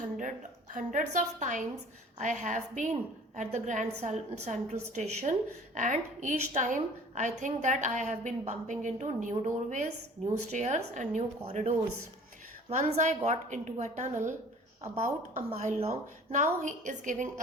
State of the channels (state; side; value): normal; both; correlation 0.48